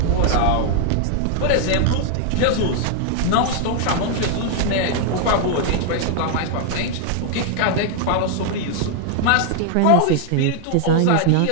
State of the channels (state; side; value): different; both; correlation 0.00